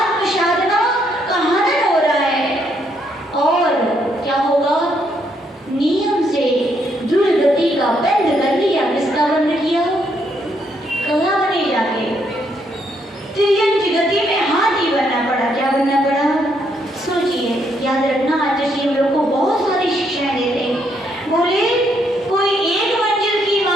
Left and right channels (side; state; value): both; normal; correlation 0.74